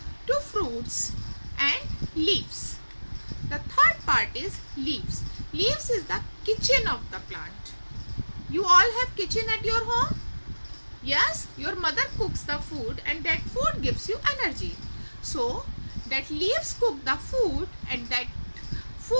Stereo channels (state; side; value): inverted; both; correlation -1.00